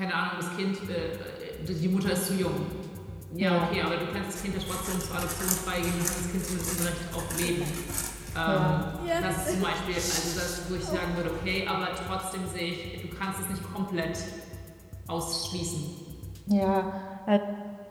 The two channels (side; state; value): both; identical; correlation 1.00